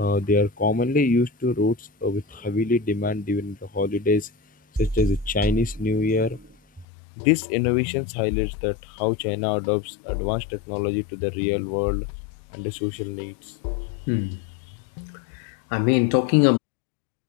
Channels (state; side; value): drops out; right; at 6.9 s